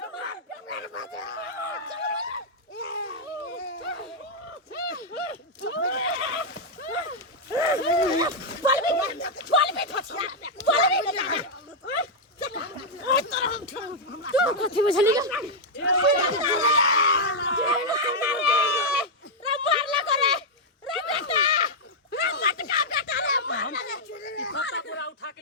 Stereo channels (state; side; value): normal; both; correlation -0.03